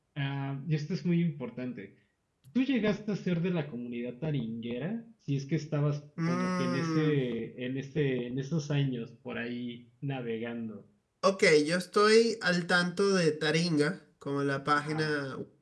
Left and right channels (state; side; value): identical; both; correlation 1.00